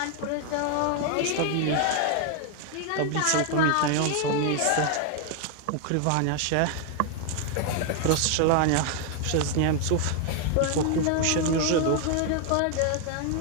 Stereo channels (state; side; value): different; both; correlation 0.01